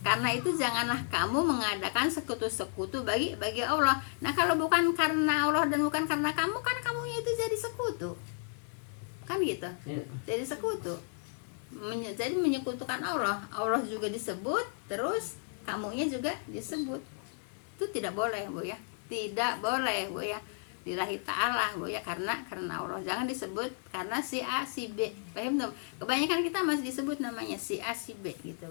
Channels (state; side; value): silent; right; 56 dB below the other